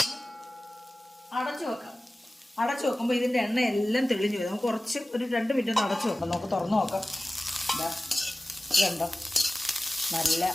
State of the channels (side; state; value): both; normal; correlation 0.97